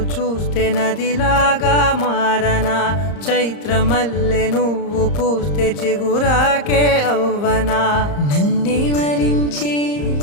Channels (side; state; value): right; late; 34 ms